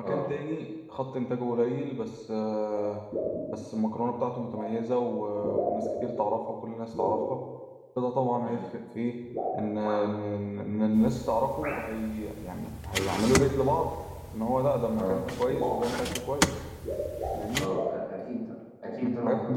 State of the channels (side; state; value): both; identical; correlation 1.00